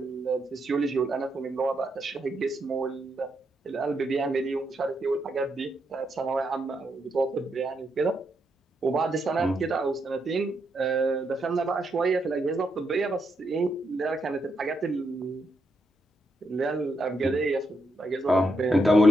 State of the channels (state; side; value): normal; both; correlation 0.80